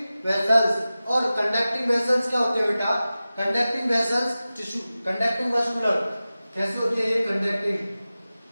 vessels. और कंडक्टिंग वेसल्स क्या होते हैं बेटा? Conducting vessels tissue, conducting vascular. कैसे होते हैं ये कंडक्टिंग?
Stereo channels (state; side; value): inverted; both; correlation -0.96